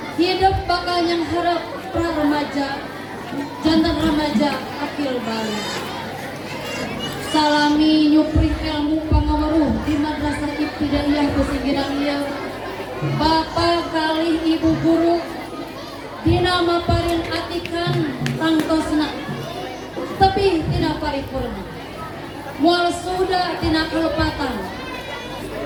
hidup bakal yang harap pra remaja jantan remaja akil balik salami nyupri ilmu pangawaruh di madrasah ibtidaiyah pesinggiran ieu bapak kali ibu guru dina maparin atikan tangtosna tapi tidak paripurna mual sudah tina kalepatan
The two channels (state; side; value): identical; both; correlation 1.00